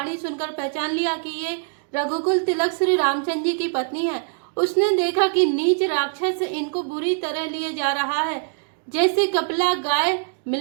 सुनकर पहचान लिया कि ये रघुकुल तिलक श्री रामचंद्र जी की पत्नी है। उसने देखा कि नीच राक्षस इनको बुरी तरह लिए जा रहा है, जैसे कपिला गाय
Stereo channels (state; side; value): silent; left; digital silence